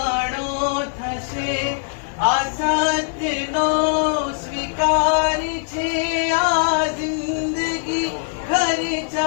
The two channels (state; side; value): silent; right; digital silence